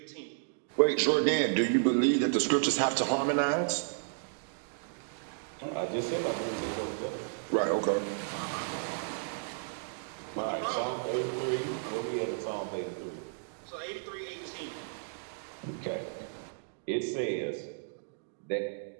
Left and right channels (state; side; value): silent; left; digital silence